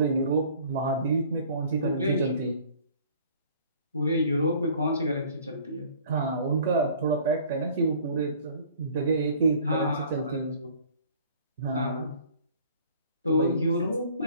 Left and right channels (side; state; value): both; inverted; correlation -0.52